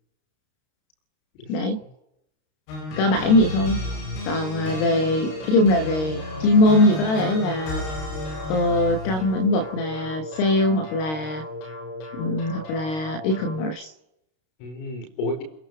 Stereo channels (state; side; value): late; right; 32 ms